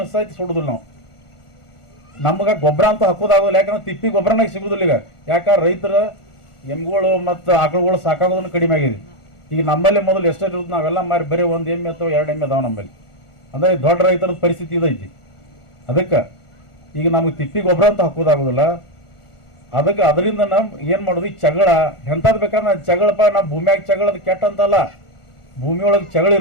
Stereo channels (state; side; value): late; right; 1.4 ms